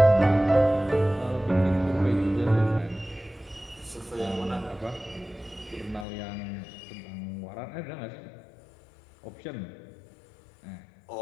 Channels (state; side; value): drops out; right; at 6.1 s